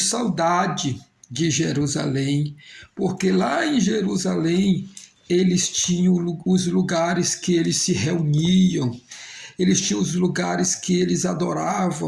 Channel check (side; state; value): both; identical; correlation 1.00